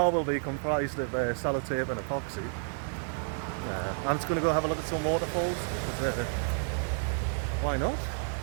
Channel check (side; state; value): left; silent; 57 dB below the other